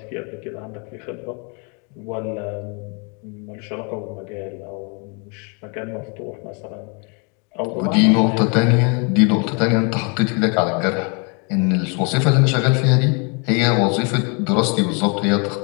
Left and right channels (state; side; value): quieter; right; 35.0 dB